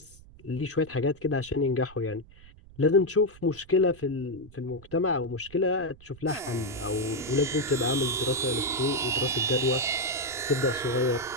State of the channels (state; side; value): noise; right; rumble, 22 dB below the sound